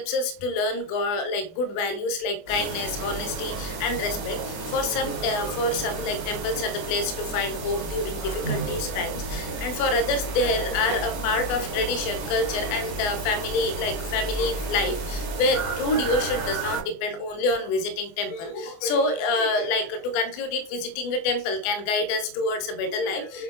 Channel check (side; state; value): right; late; 24 ms